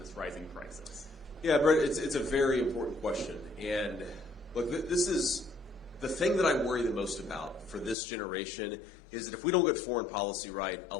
this rising crisis? Yeah, Brett, it's a very important question. And look, this is the thing that I worry the most about for this generation is that if we don't get foreign policy right, a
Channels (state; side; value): drops out; right; at 8.0 s